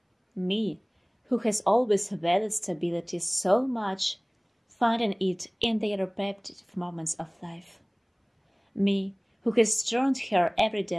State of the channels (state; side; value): identical; both; correlation 1.00